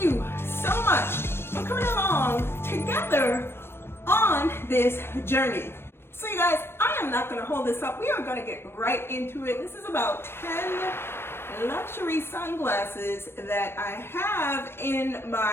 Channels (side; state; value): right; late; 0.12 ms